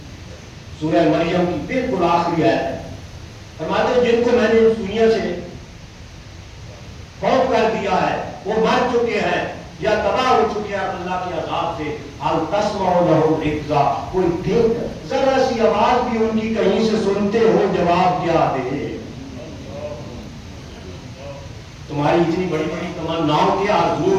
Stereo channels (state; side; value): identical; both; correlation 1.00